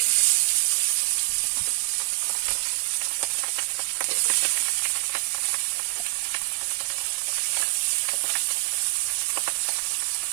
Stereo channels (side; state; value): left; silent; digital silence